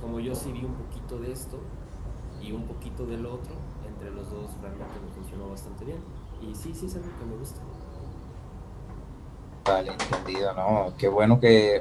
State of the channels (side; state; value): both; identical; correlation 1.00